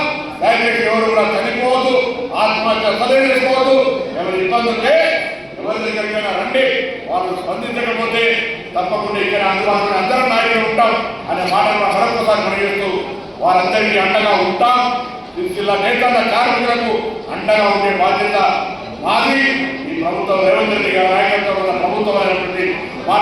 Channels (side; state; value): both; identical; correlation 1.00